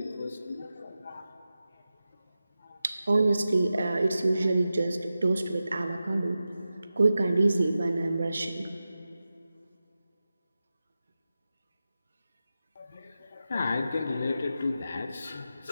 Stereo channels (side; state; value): both; inverted; correlation -0.93